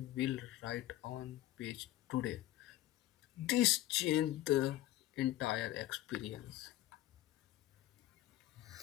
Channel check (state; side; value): quieter; right; 15.0 dB